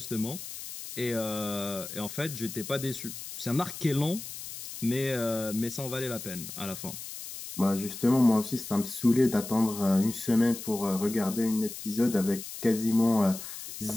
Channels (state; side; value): noise; left; hiss, 10 dB below the sound